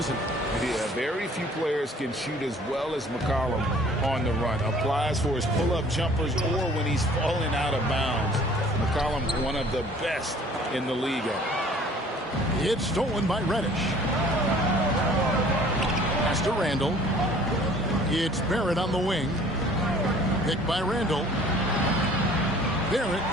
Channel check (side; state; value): both; normal; correlation 0.52